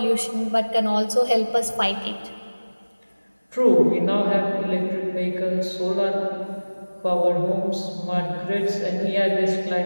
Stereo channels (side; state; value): both; inverted; correlation -1.00